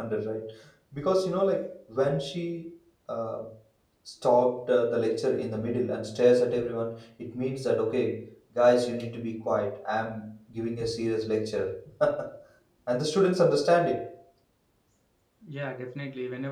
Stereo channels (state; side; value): identical; both; correlation 1.00